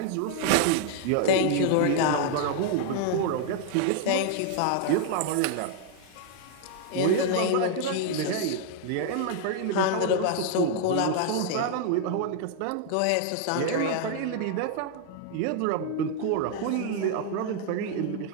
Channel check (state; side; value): different; both; correlation 0.00